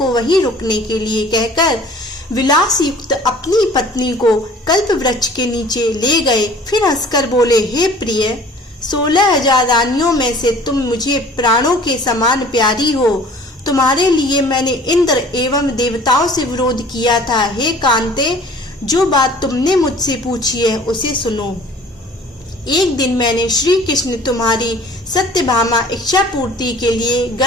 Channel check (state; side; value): normal; both; correlation 0.49